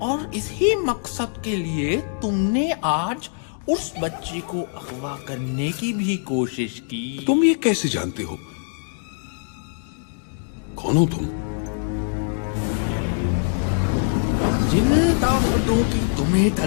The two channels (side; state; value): right; silent; digital silence